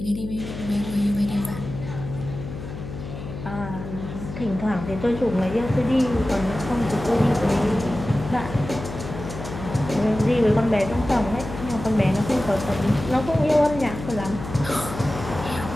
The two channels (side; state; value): left; noise; hum, 9 dB below the sound